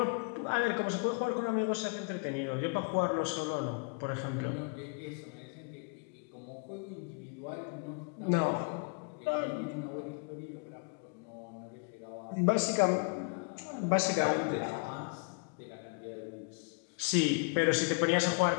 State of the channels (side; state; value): right; quieter; 33.7 dB